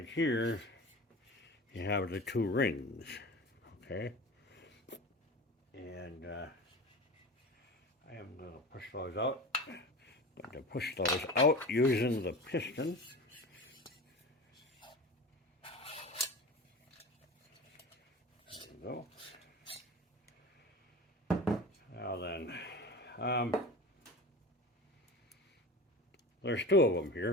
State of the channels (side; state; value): both; normal; correlation 0.33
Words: here, you have the 2 rings. Okay? And I am going to push those out. I'm going to push those out using the piston. There you go. Now then, there's 2 of them